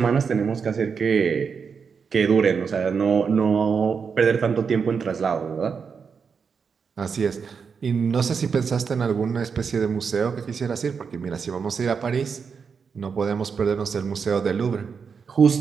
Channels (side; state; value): left; quieter; 6.0 dB